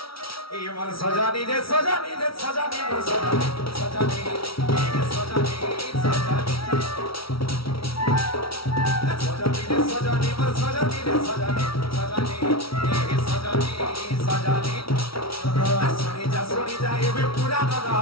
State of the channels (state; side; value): late; right; 0.75 ms